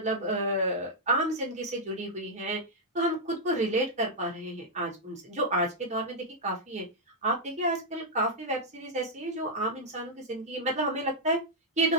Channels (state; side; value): normal; both; correlation -0.05